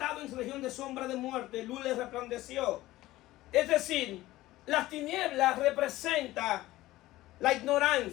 en región de sombra de muerte, luz les resplandeció. Es decir, las tinieblas representan la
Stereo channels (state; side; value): quieter; right; 16.8 dB